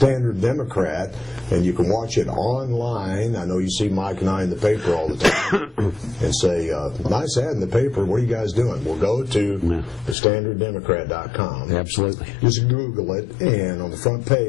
Democrat, and you can watch it online. I know you see Mike and I in the paper all the time and say, nice ad in the paper, what are you guys doing? Well, go to thestandarddemocrat.com. Absolutely. Just Google it, and on the front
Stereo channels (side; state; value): right; drops out; at 10.2 s